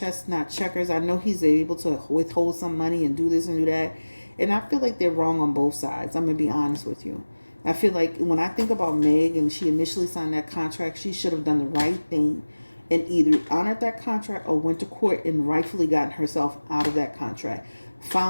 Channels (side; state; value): both; inverted; correlation -1.00